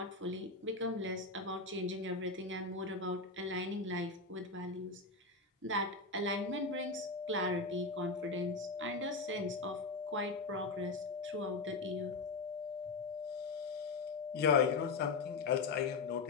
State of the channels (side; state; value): right; quieter; 3.8 dB